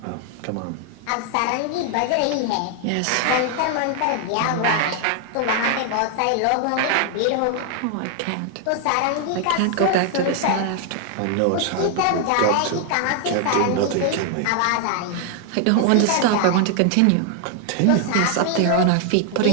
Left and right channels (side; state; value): both; different; correlation 0.00